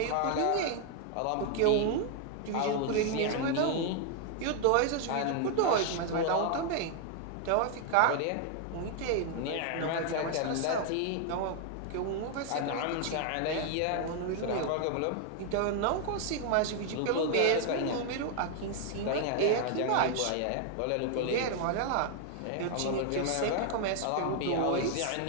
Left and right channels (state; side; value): different; both; correlation 0.00